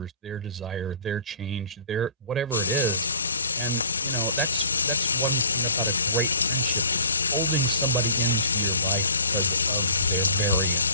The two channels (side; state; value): both; inverted; correlation -0.47